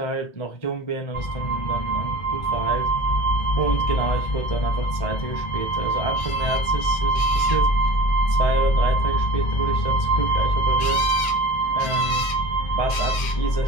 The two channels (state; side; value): late; right; 1.8 ms